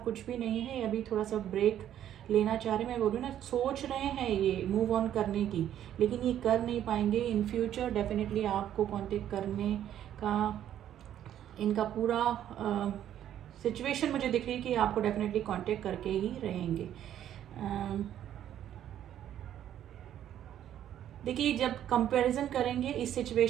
भी नहीं है। अभी थोड़ा सा ब्रेक लेना चाह रहे हैं, मैं बोल रही हूँ ना, सोच रहे हैं ये मूव ऑन करने की, लेकिन ये कर नहीं पाएंगे। इन फ्यूचर डेफिनेटली आपको कांटेक्ट करने का इनका पूरा सिचुएशन मुझे दिख रही है कि आपको डेफिनेटली कांटेक्ट करके ही रहेंगे। देखिए जब कंपैरिजन करेंगे इस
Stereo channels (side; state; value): left; quieter; 10.9 dB